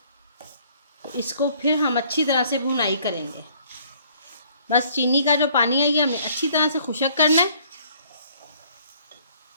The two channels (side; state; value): both; inverted; correlation -0.60